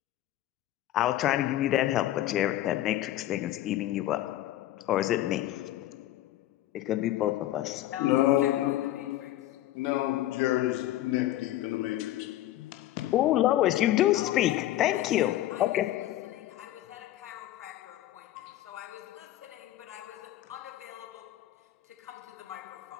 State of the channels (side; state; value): right; quieter; 14.2 dB